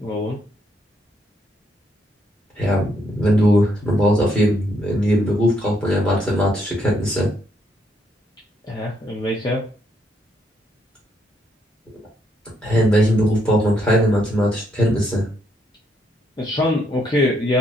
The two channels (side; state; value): both; normal; correlation 0.74